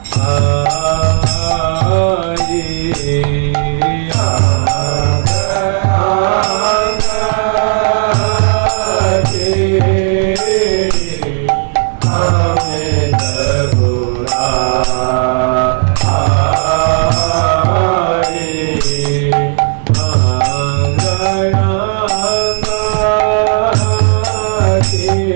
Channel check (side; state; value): left; silent; digital silence